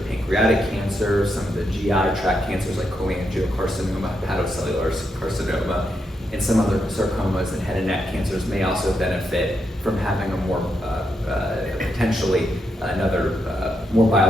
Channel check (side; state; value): both; normal; correlation 0.82